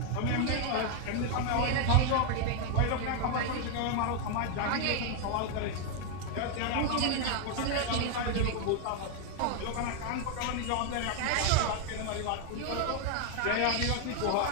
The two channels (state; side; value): different; both; correlation 0.00